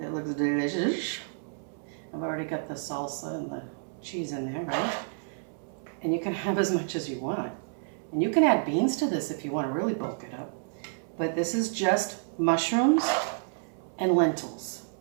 It looks delicious. I've already got the salsa and the cheese in there, right? And you can have as much as you want. And you can add beans to this if you want to really bulk it up. But this is just mushrooms and lentils.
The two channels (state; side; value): silent; left; 58 dB below the other